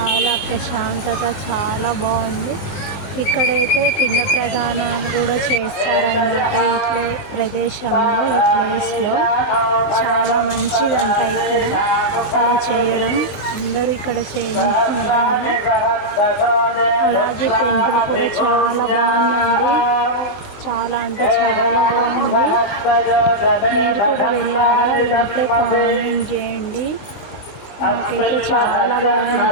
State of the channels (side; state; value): right; late; 20 ms